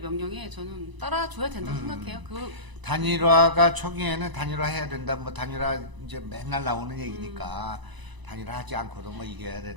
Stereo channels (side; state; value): left; late; 1.0 ms